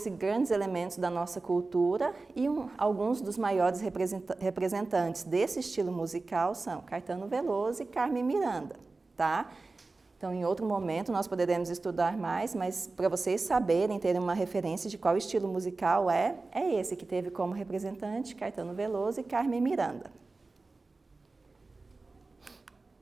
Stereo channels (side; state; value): left; quieter; 3.6 dB